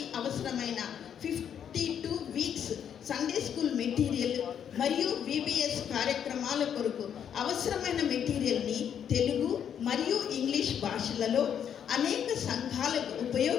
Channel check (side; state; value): right; quieter; 8.7 dB